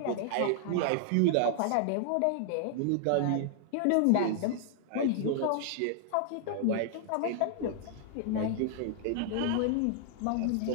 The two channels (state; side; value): different; both; correlation 0.00